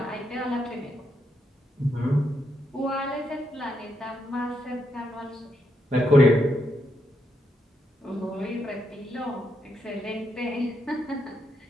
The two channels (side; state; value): both; normal; correlation 0.80